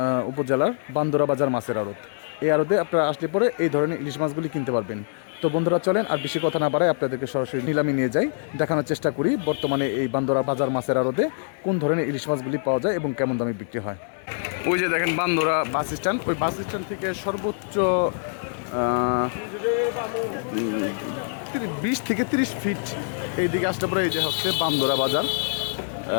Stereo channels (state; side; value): silent; right; 62 dB below the other